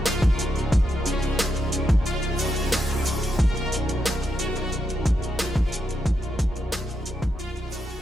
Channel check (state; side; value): normal; both; correlation 0.83